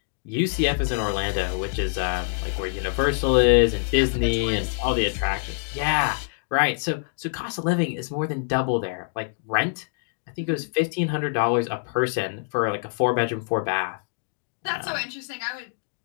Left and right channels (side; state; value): right; silent; digital silence